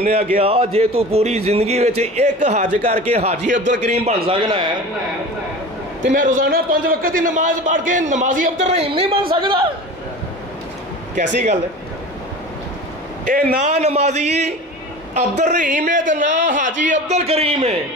ने आख्या जे तू पूरी जिंदगी विच एक हज करके हाजी अब्दुल करीम बन सकना है तो मैं रोजाना 5 वक्त की नमाज पढ़ के नमाजी अब्दुल रहीम नहीं बन सकता? कैसी गल है? ये ना नमाजी अब्दुल रहीम है तो ना हाजी अब्दुल करीम है।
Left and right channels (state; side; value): normal; both; correlation 0.35